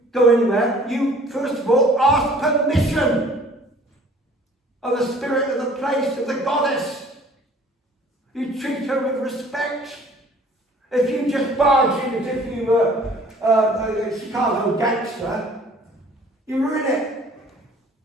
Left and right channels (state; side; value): normal; both; correlation 0.53